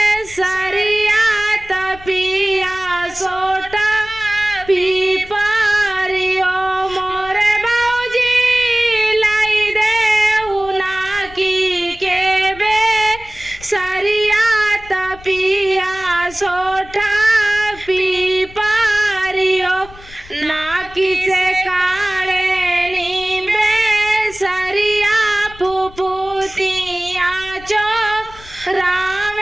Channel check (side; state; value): left; noise; rumble, 20 dB below the sound